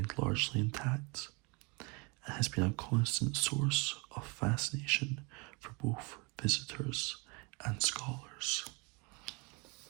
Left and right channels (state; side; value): quieter; left; 29.9 dB